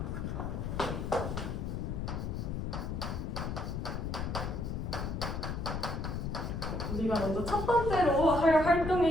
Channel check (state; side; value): noise; left; rumble, 3 dB below the sound